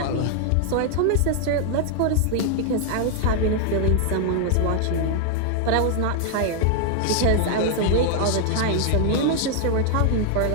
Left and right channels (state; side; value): different; both; correlation 0.00